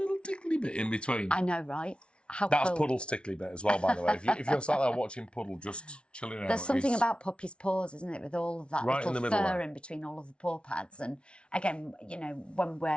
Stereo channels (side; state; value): right; late; 0.058 ms